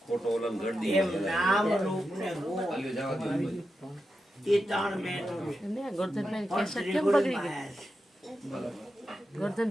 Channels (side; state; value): both; normal; correlation 0.88